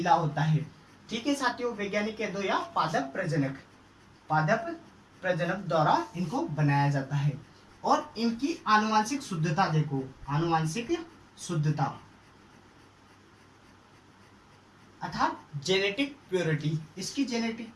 होता है। ठीक है साथियों, वैज्ञानिक कह दो या पादप प्रजनक द्वारा इनको बनाया जाता है। और इनकी आनुवांशिक शुद्धता देखो, आनुवांशिक शुद्धता अर्थात जेनेटिक प्योरिटी। इसकी जेनेटिक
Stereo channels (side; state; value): both; identical; correlation 1.00